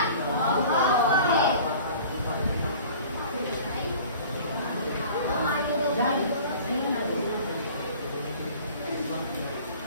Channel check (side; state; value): both; inverted; correlation -0.45